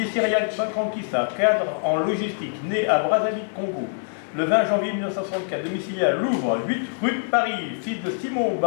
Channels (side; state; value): right; silent; digital silence